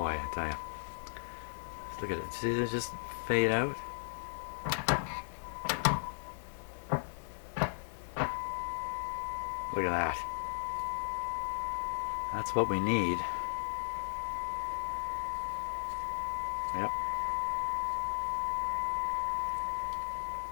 I tell you. Look at it. See it just fade out? Look at that. That's what we need. Yep.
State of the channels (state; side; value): silent; right; digital silence